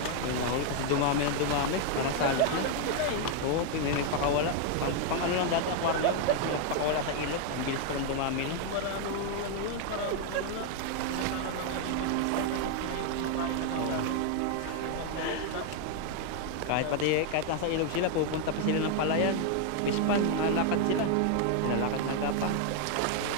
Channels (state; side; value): different; both; correlation 0.01